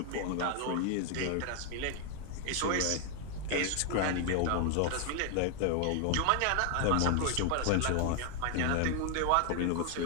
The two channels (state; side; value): different; both; correlation 0.00